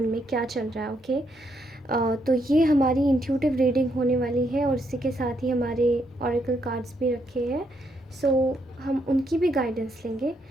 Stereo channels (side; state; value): both; normal; correlation 0.76